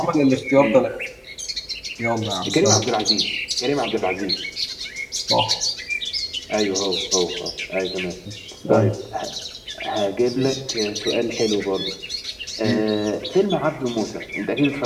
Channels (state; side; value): identical; both; correlation 1.00